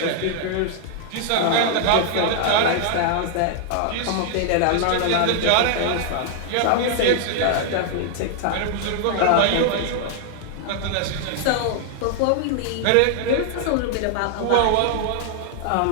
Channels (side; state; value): both; different; correlation 0.00